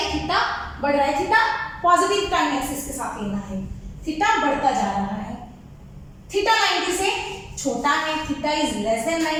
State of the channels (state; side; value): identical; both; correlation 1.00